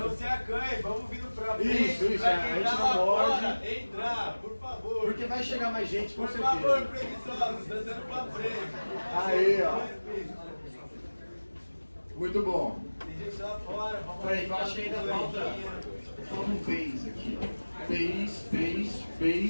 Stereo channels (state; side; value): inverted; both; correlation -1.00